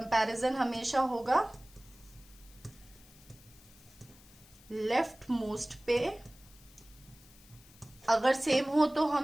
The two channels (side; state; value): left; noise; hiss, 24 dB below the sound